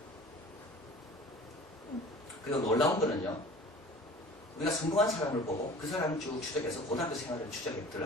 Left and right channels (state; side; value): normal; both; correlation 0.43